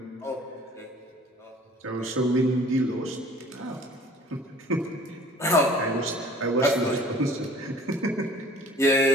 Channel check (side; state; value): both; normal; correlation 0.50